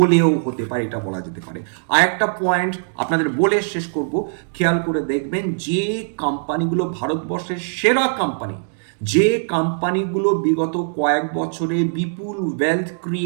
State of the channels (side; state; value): left; silent; digital silence